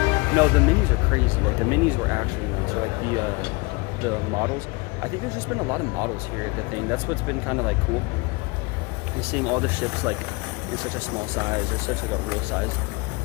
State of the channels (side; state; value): right; quieter; 26.8 dB